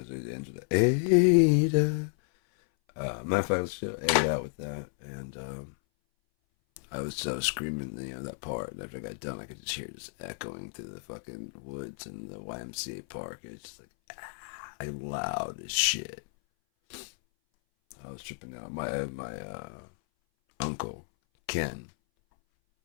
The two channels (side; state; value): right; silent; 57 dB below the other